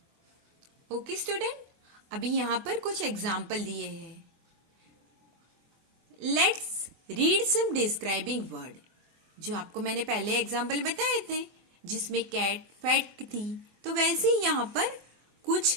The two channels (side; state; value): left; late; 24 ms